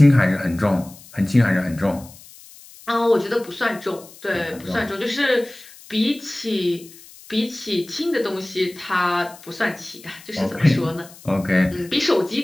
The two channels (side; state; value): left; noise; hiss, 21 dB below the sound